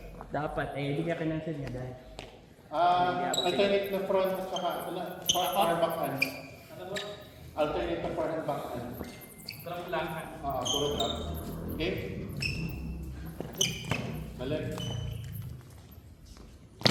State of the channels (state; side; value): identical; both; correlation 1.00